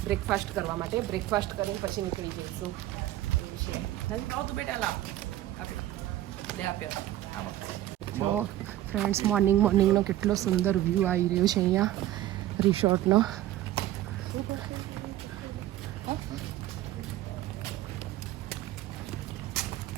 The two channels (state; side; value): quieter; left; 14.0 dB